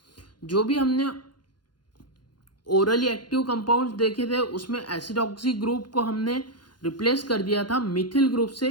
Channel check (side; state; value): right; late; 0.71 ms